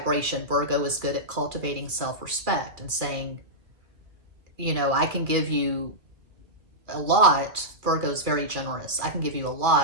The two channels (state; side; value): late; left; 2.4 ms